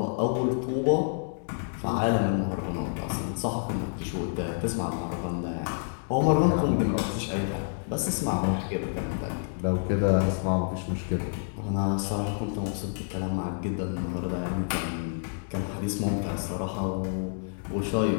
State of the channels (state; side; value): silent; right; digital silence